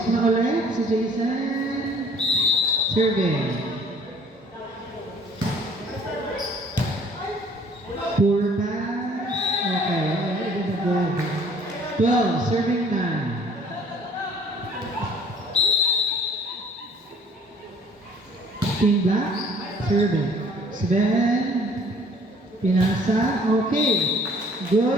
na ulit si Jason. Serving. Poor pass. Okay, it is a goal. 12, serving 9. Team Black, serving. Sven, pinasa. Okay,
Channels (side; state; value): both; normal; correlation 0.55